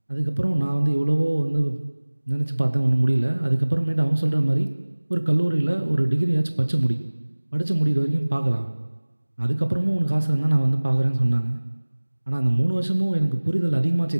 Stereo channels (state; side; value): inverted; both; correlation -1.00